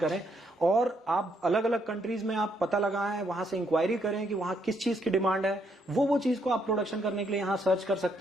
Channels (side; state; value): both; normal; correlation 0.74